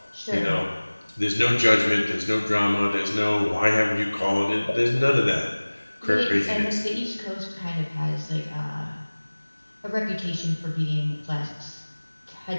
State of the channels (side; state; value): both; inverted; correlation -1.00